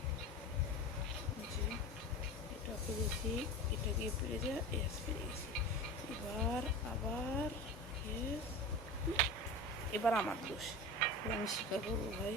এটা পেরেছি, এটা গিয়ে পেরে যা, এস পেরে গেছি। এবার আবার এবার আমার দোষ, আমি স্বীকার করবো ভাই।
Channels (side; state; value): both; normal; correlation 0.31